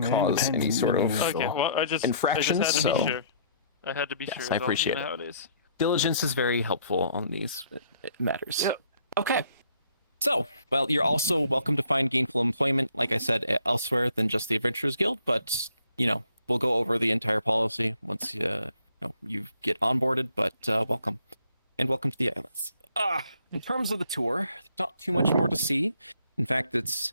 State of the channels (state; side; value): inverted; both; correlation -0.63